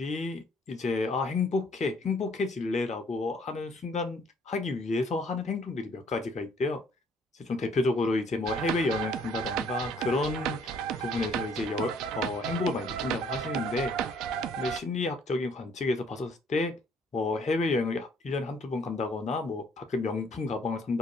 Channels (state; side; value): normal; both; correlation 0.62